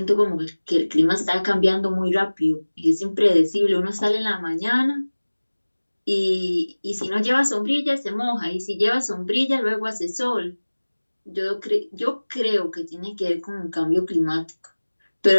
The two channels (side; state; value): both; inverted; correlation -1.00